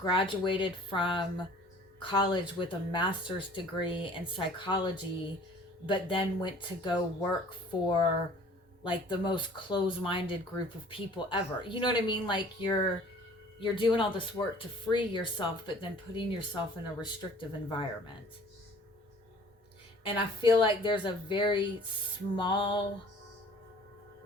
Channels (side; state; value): both; normal; correlation 0.50